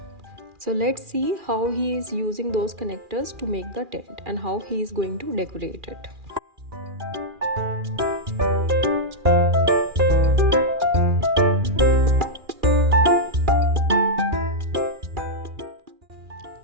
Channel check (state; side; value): late; left; 2.4 ms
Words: So let's see how he is using those connectors to make the tent and how he is going to decorate it.